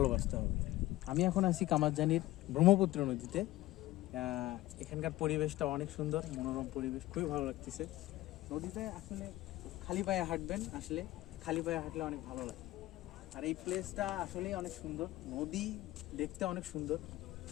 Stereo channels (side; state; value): right; quieter; 16.9 dB